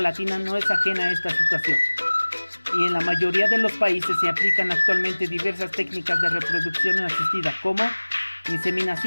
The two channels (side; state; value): both; inverted; correlation -1.00